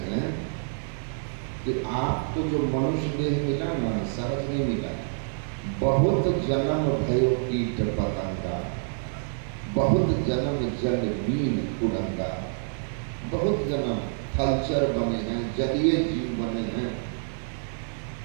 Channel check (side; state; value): left; silent; digital silence